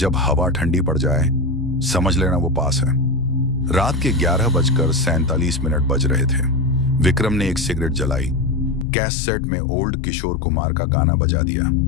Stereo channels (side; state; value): right; drops out; at 8.8 s